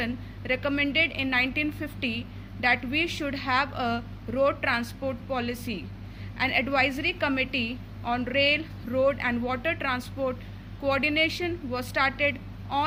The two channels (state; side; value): identical; both; correlation 1.00